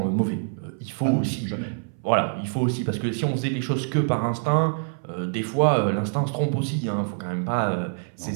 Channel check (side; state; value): left; silent; 60 dB below the other